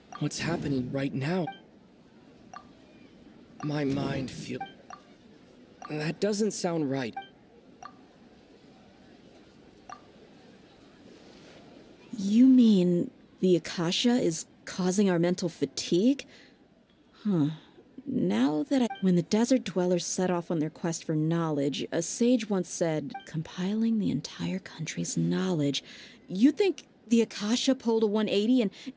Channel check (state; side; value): identical; both; correlation 1.00